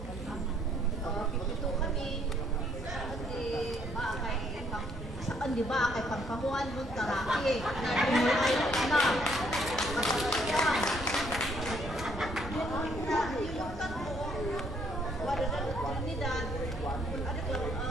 Pipito kami. Saan di ba kay pangkahuan mo taraki. Ay na. Yan. Yung kanto, wala na Trinidad. Ano ko,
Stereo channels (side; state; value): both; normal; correlation 0.68